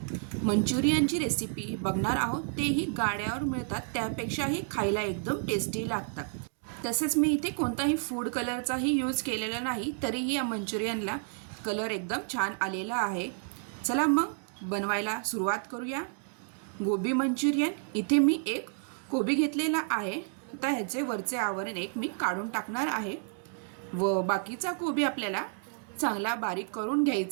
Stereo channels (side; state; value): left; silent; 57 dB below the other